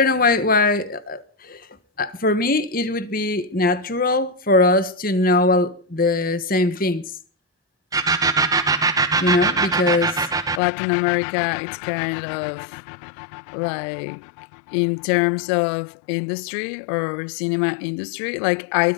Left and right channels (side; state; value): right; drops out; at 10.6 s